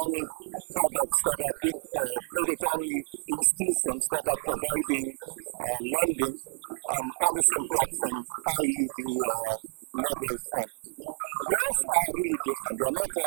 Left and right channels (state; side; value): silent; left; 58 dB below the other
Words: products that have been, or credit-only institutions that are providing lending on the same platform, i.e. the mobile phone. Those are really different. They are not